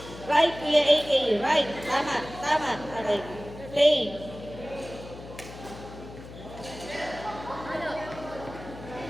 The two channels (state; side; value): noise; left; hum, 14 dB below the sound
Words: Right, Kuya AK. Right. Tama. Tama. Okay. Play. Ano?